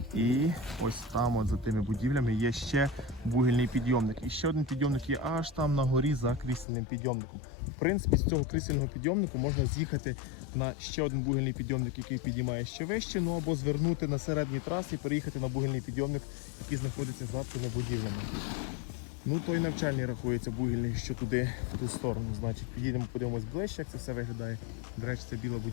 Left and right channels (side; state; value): right; drops out; at 6.7 s